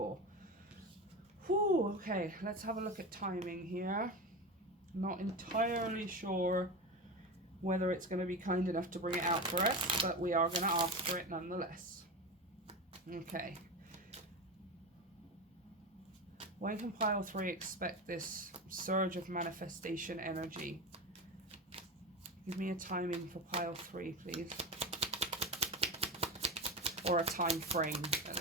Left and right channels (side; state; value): both; normal; correlation 0.22